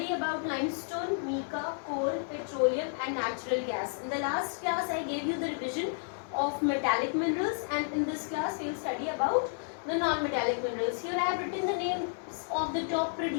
about limestone, mica, coal, petroleum and natural gas. In the last class I gave you the revision of metallic minerals, and in this class we will study about the non-metallic minerals. Here I have written the names of the top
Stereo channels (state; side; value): silent; right; digital silence